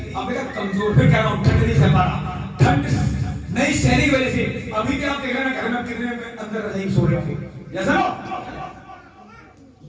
अब मेरा कमजोर। फिर कह रहा हूं, ठंड नहीं सह पा रहा, ठंड नहीं सहने की वजह से। अभी भी आप देख रहे हैं घर में कितने अंदर नहीं सो रहे थे, जैसा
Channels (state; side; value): identical; both; correlation 1.00